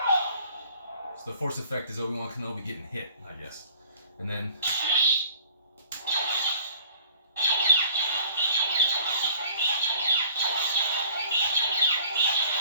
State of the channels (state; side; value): inverted; both; correlation -0.52